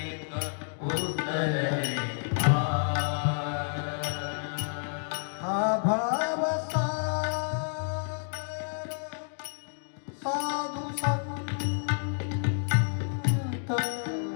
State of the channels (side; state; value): right; silent; digital silence